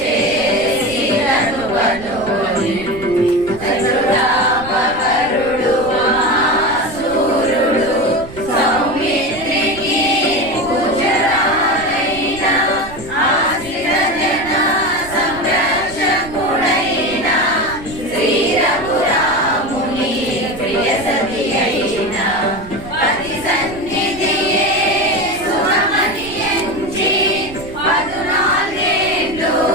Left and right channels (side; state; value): right; noise; rumble, 16 dB below the sound